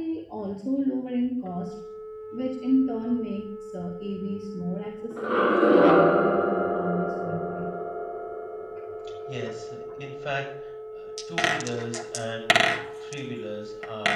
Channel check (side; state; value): both; identical; correlation 1.00